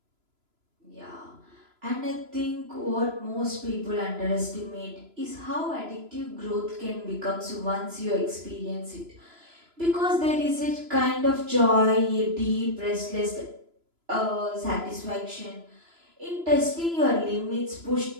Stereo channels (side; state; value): left; late; 3.0 ms